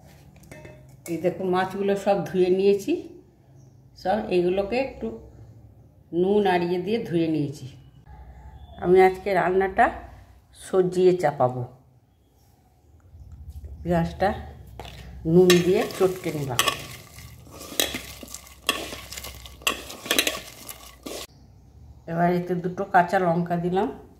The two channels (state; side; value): identical; both; correlation 1.00